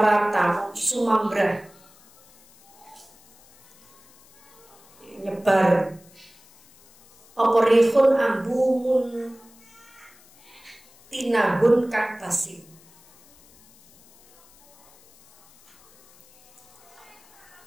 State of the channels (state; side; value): noise; left; hiss, 28 dB below the sound